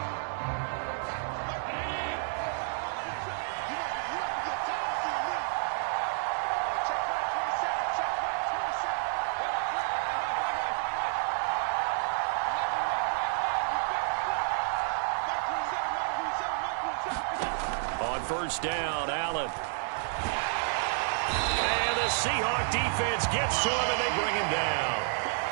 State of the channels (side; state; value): left; silent; 58 dB below the other